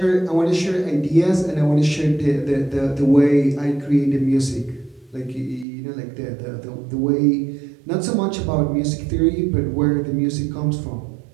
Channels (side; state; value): left; drops out; at 5.7 s